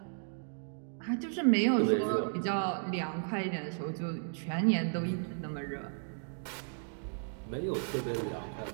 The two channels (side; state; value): left; silent; digital silence